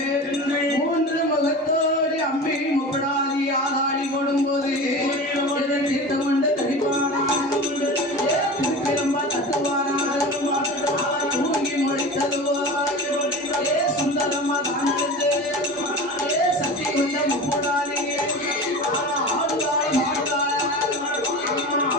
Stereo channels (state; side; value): normal; both; correlation 0.32